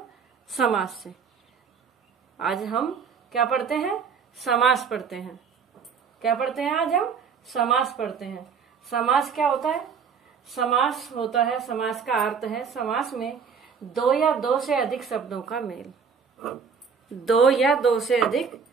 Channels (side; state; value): left; quieter; 6.2 dB